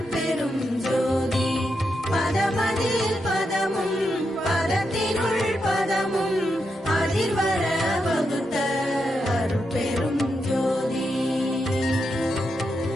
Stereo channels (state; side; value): normal; both; correlation 0.84